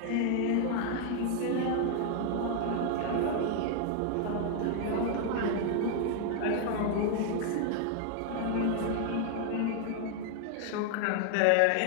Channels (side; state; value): both; different; correlation 0.00